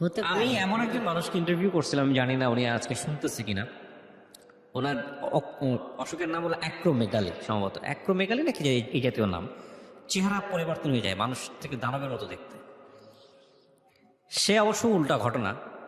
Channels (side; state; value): both; identical; correlation 1.00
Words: হতে পারে। আমি এমন একজন মানুষকে ইন্টারভিউ করছিলাম, আমি জানি না উনি আজকে শুনতেছে কিনা, ওনার অসুখের নাম হলো অ্যাক্রোমেগালি, সম্ভবত অ্যাক্রোমেগালি নাকি এই জাতীয় নাম। চেহারা পরিবর্তন হয়ে যায়, মানুষ থেকে দানবের মতো দেখতে। সে অবশ্য উল্টা ঘটনা,